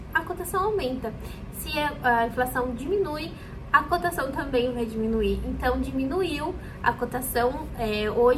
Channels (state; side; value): identical; both; correlation 1.00